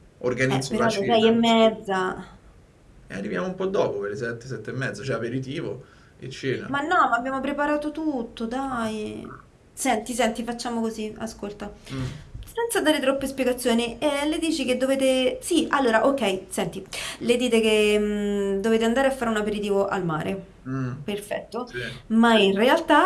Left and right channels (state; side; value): identical; both; correlation 1.00